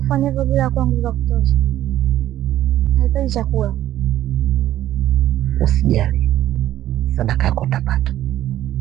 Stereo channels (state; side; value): quieter; left; 12.9 dB